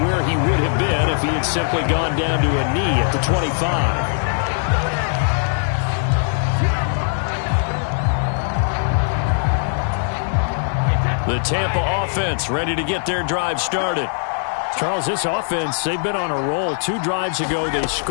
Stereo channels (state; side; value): silent; right; digital silence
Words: where he would have been if he had simply gone down to a knee at the 25. The Tampa offense ready to get their drive started. Charles, this offense, they've been on a roll. 2 drives ago, they